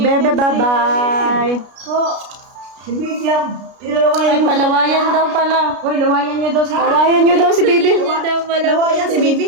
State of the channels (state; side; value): late; left; 33 ms